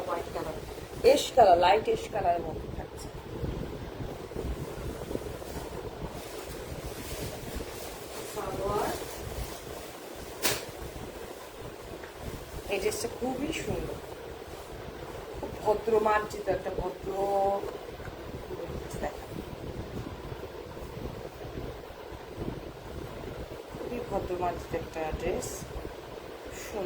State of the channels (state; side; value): identical; both; correlation 1.00